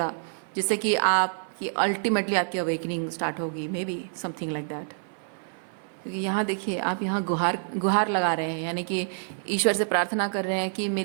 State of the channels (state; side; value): silent; left; 57 dB below the other